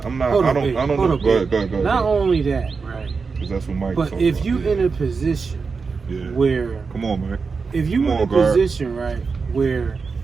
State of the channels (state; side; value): quieter; left; 4.9 dB